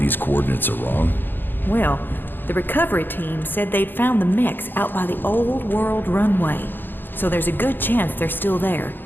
coordinates are wrong? Well, the recovery team said they'd found the mechs out by the old world runway. So there's a good chance they're still there.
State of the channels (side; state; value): right; late; 0.096 ms